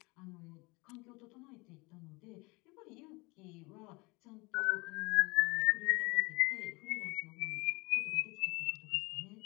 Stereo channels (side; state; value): right; quieter; 25.7 dB